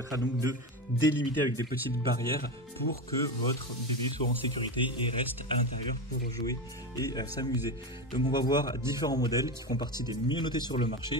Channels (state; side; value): normal; both; correlation 0.19